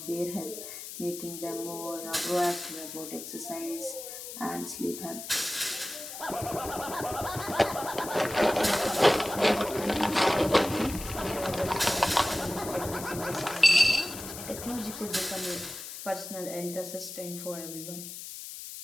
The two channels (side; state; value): left; noise; hiss, 10 dB below the sound